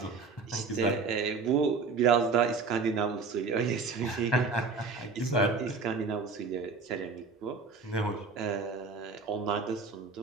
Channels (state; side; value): quieter; left; 4.5 dB